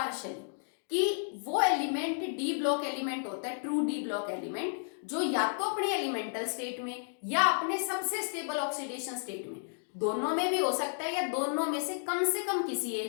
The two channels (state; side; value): silent; right; digital silence